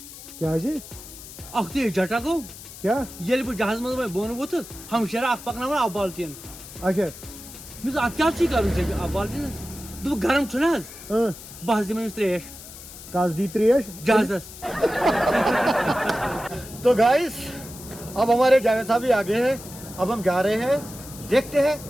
क्या अख ते जटा गो क्या ये जहाज मज बोन वोथस हम शरा अख पकनावन अब बाल्टीन अच्छा मिस अत क्या कर अब बाल्टीन दो गर्म छुना बस दिम त्रेश कस दी त्रेश जहाजस तो गाइस अब हमारे जावेद साहब भी आ गए हैं। अब हम जा रहे हैं, देखते हैं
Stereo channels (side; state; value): left; noise; hiss, 15 dB below the sound